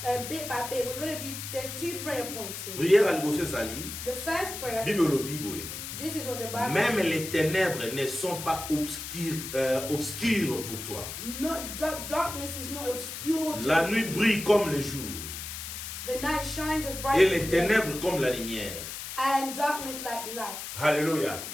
bit by bit. We're going to do, there's 2 prayer points here. The first prayer, this is what the Bible Même says. les ténèbres ne sont pas obscures pour toi. No, darkness is not obscure. La nuit brille comme le jour. The night shines as bright Et as les day. ténèbres comme la lumière. And darkness like light. Alléluia.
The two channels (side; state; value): left; noise; hiss, 8 dB below the sound